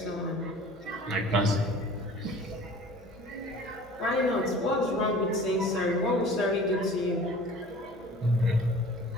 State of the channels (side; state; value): left; noise; hum, 25 dB below the sound